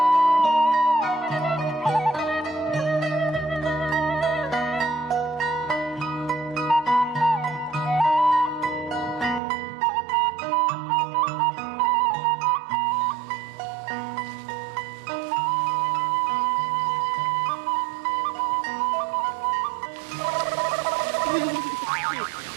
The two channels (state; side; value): drops out; left; at 9.4 s